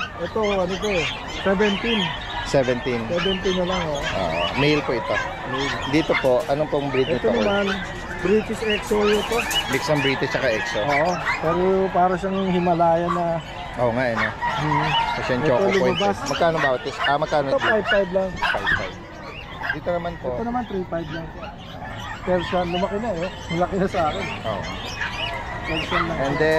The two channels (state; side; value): identical; both; correlation 1.00